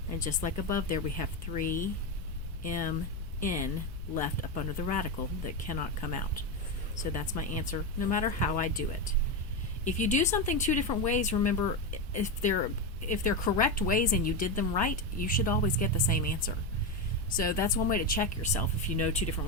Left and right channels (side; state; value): left; noise; rumble, 9 dB below the sound